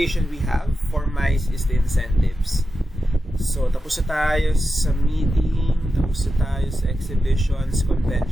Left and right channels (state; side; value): normal; both; correlation 0.90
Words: we have for MICE is the incentives. So tapos na tayo sa meeting, tapos na tayo sa exhibitions,